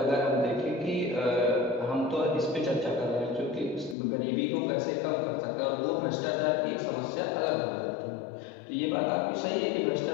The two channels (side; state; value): right; drops out; at 4.0 s